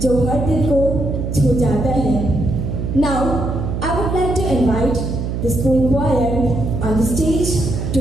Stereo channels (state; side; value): noise; right; hum, 3 dB below the sound